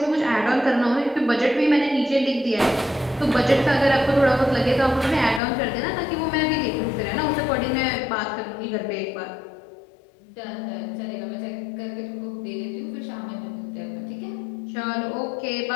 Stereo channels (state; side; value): drops out; right; at 5.4 s